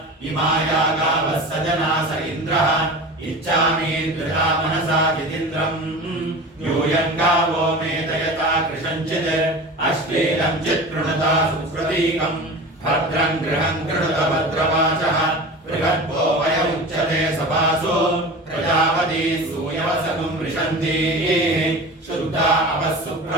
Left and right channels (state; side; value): normal; both; correlation 0.33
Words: इमाया गावः सजना स इन्द्रः इच्छामीन्द्रिया मनसा जितीन्द्रम् यूयं गावो मे दयता कृशञ्चित् अश्लीलं चित्कृणुता सुप्रतीकम् भद्रं गृहं कृणुत भद्रवाचः बृहद्भो वय उच्यते सभासु प्रजापती सूयवसगुं वृषन्ति शुद्धा